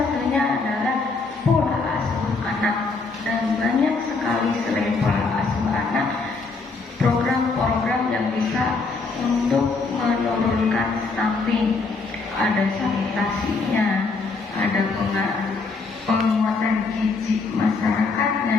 adalah pola asuh anak, dan banyak sekali selain pola asuh anak program-program yang bisa untuk menurunkan stunting. Ada sanitasinya, ada penguatan gizi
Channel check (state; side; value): quieter; right; 4.0 dB